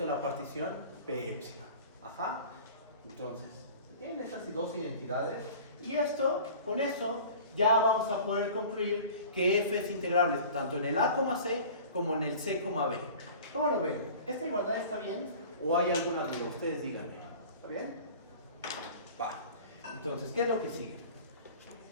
a la partición P epsilon. Ajá. Entonces, tienen esas dos identidades. Y con eso, ya vamos a poder concluir que F es integrable tanto en el A, C como en el C, B. ¿Cómo lo ven? ¿Esta igualdad está bien? ¿O hay alguna duda? Ustedes díganme. ¿Está bien? Va. Entonces, ¿qué es lo que sigue?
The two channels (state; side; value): inverted; both; correlation -0.42